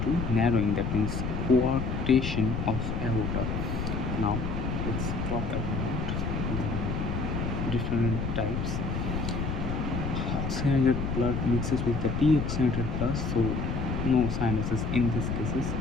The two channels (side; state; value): left; noise; rumble, 2 dB below the sound